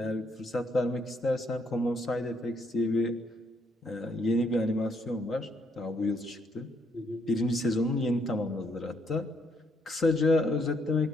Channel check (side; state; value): both; normal; correlation 0.72